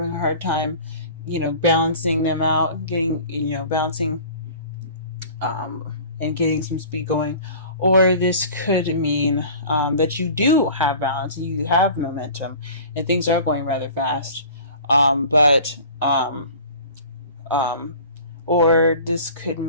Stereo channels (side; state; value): both; inverted; correlation -0.43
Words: a hard time, balancing them out, getting, balancing, and getting some speed going. Or this could mean that you do have balance, and you have momentum, and things are going rather fast. Or this could